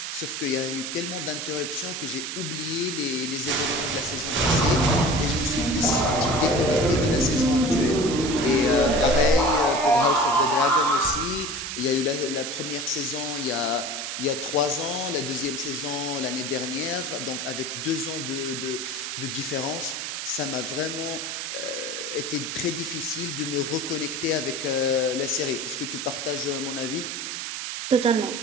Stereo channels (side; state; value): right; noise; hiss, 5 dB below the sound